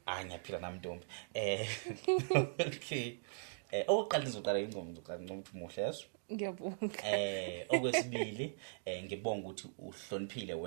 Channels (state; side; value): silent; left; digital silence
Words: Ngiyaphila nami Ntombi. Okay. Oqala nizoqala ingoma ukuthi muhle yeso. Ngiyabonga. Okwesibili ngibonga ukuthi uhloniphile